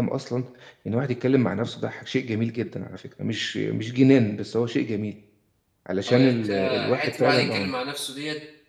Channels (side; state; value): both; identical; correlation 1.00